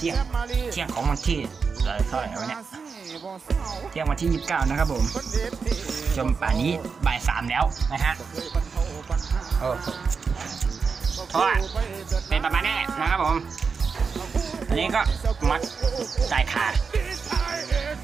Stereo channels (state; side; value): quieter; left; 5.3 dB